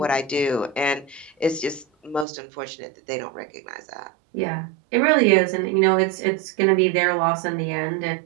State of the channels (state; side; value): drops out; left; at 2.2 s